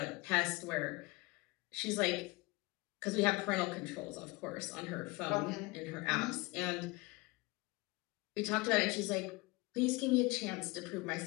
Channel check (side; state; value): right; quieter; 23.6 dB